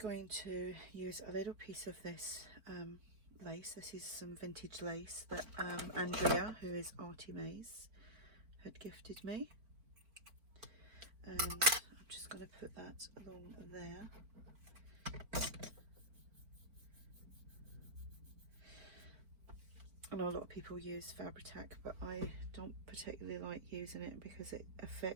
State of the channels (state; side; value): late; left; 4.5 ms